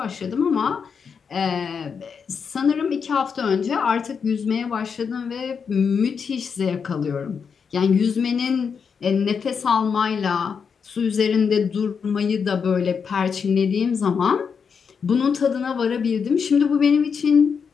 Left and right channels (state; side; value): quieter; right; 6.2 dB